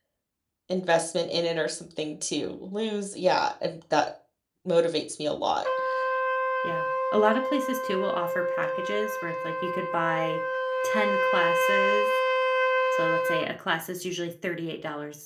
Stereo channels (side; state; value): both; identical; correlation 1.00